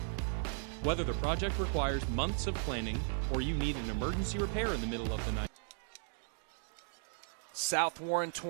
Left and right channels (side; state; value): left; silent; digital silence